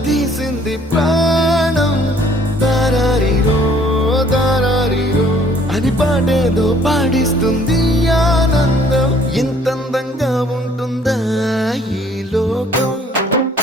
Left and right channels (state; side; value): normal; both; correlation 0.58